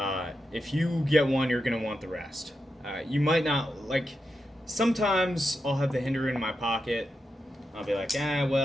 If you get one, you're going to want the rest. You might not, like, sometimes I'll have the Hinderer in my pocket. I'll be like,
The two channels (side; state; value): both; normal; correlation 0.87